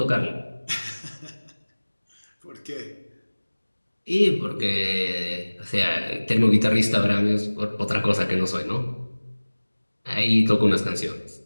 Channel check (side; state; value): both; inverted; correlation -1.00